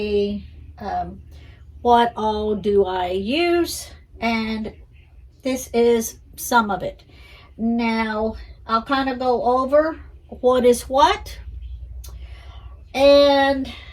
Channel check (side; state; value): both; identical; correlation 1.00